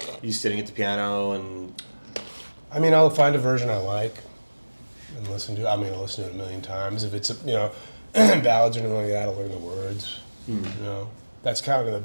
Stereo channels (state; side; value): inverted; both; correlation -1.00